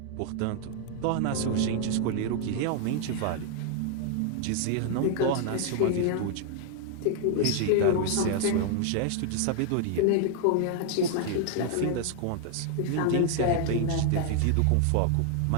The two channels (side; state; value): both; different; correlation 0.00